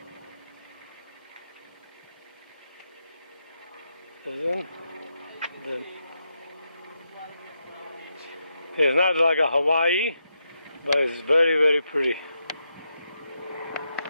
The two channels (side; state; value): both; inverted; correlation -0.84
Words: It's not like a Hawaii, but it's very, very pretty.